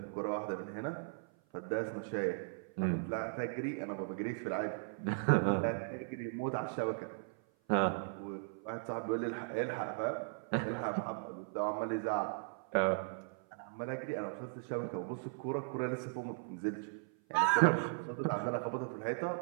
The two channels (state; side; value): silent; left; 53 dB below the other